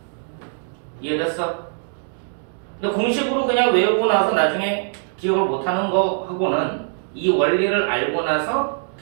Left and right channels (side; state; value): left; silent; digital silence